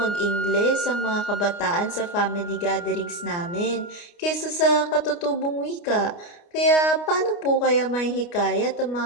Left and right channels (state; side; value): late; right; 29 ms